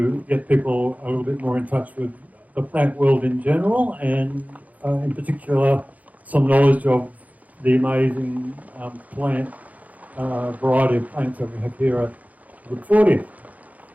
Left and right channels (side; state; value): left; late; 0.076 ms